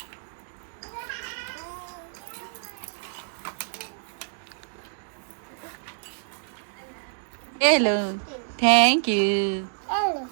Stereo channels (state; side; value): silent; left; 60 dB below the other